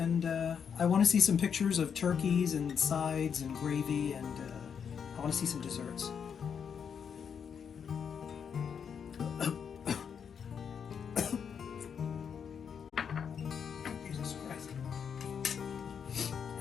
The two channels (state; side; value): quieter; right; 7.1 dB